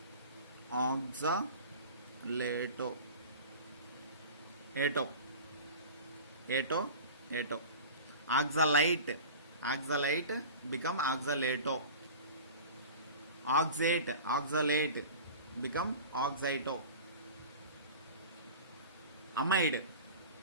ato, oxalite become oxalato, oxalate become oxito. Amide,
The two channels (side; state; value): both; inverted; correlation -0.36